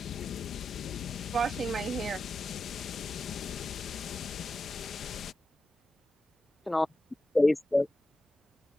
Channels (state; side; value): normal; both; correlation 0.90